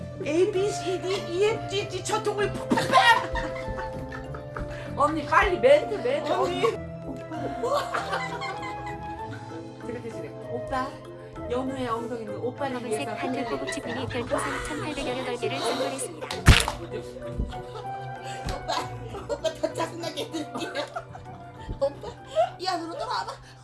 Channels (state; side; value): identical; both; correlation 1.00